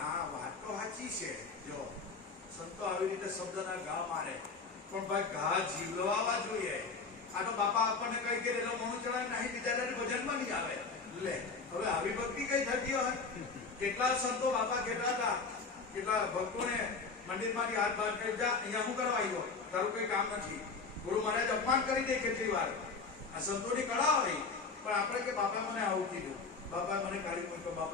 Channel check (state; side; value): quieter; right; 4.5 dB